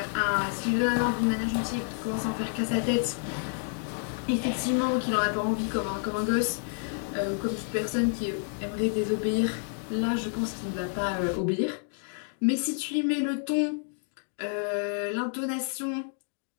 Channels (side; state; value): right; silent; 58 dB below the other